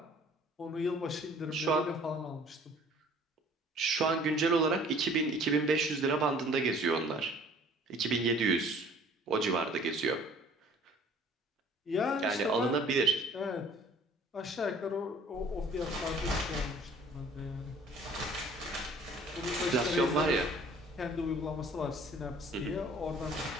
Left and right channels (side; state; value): both; normal; correlation 0.53